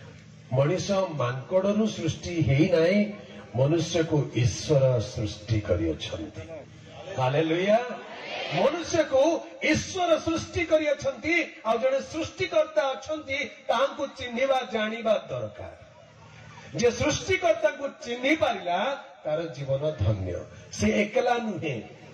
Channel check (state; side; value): identical; both; correlation 1.00